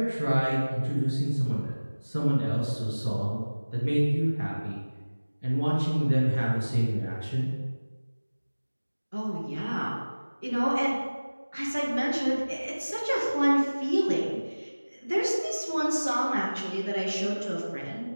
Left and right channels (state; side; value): inverted; both; correlation -1.00